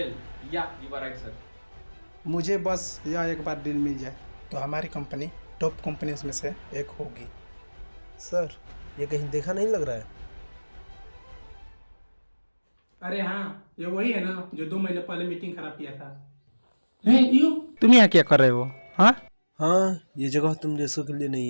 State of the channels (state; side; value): inverted; both; correlation -1.00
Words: yeah you are right sir. मुझे बस यह एक बार डील मिल जाए तो हमारी कंपनी टॉप कंपनीज में से एक होगी। सर, ये कहीं देखा नहीं लग रहा है? अरे हाँ, ये वही है ना जो 2 महीने पहले मीटिंग खराब किया था। तुम यहाँ क्या कर रहे हो? हाँ, हाँ, ये जगह तुम जैसों के लिए